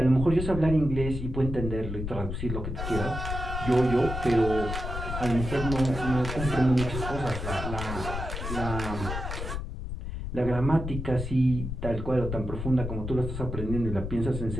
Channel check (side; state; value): left; noise; rumble, 5 dB below the sound